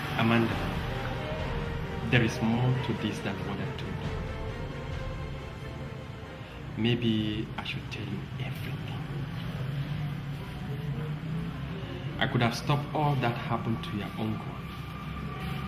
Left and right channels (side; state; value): both; identical; correlation 1.00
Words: Amanda, there is more to this than what I told you. Maybe I should tell you everything. I could have stopped all that happened to your uncle.